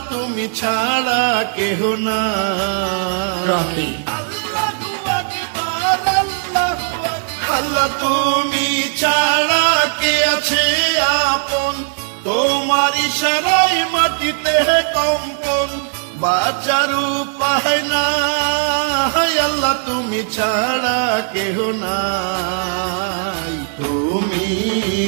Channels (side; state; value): left; silent; 68 dB below the other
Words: তুমি ছাড়া কেহ নাই। আল্লাহ তুমি ছাড়া কে আছে আপন, তোমার ইশারায় মাটিতে কম্পন, বাঁচার উপায় নাই আল্লাহ তুমি ছাড়া কেহ নাই। তুমি